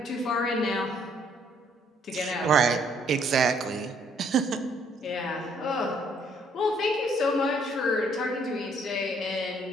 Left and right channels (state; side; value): normal; both; correlation 0.65